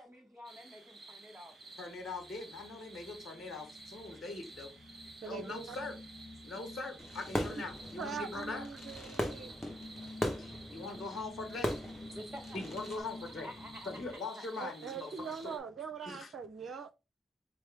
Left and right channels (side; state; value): both; normal; correlation 0.73